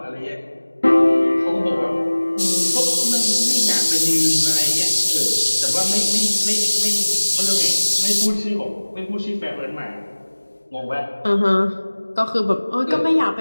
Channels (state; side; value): inverted; both; correlation -1.00